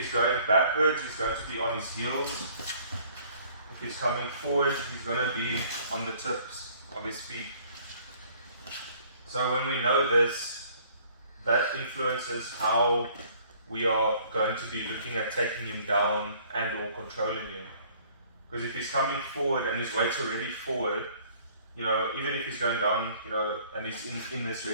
going backwards, he's going to be on his heels. If he's coming forward, he's going to be on the tips of his feet. So when we know this, that influences how we are going to be looking at taking him down and or controlling him. Because if he's coming forward and his weight's already forward, even if he's going down, and he's in this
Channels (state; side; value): inverted; both; correlation -0.57